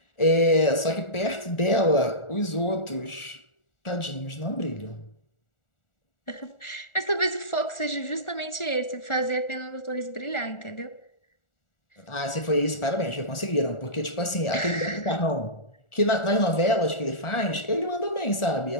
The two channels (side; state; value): right; late; 1.4 ms